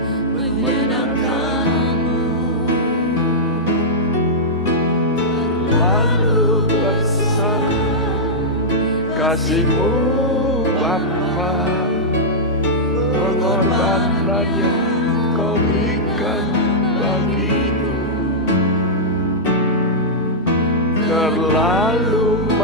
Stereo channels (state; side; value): normal; both; correlation -0.10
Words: menyenangkan-Mu. Lalu besar kasih-Mu Bapa, pengorbanan yang Kau berikan bagiku terlalu